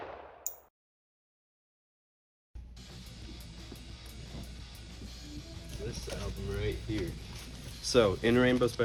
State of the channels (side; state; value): both; identical; correlation 1.00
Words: this album right here. So, In Rainbows by